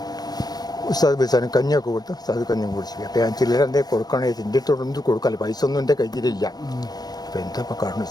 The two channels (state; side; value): late; right; 0.19 ms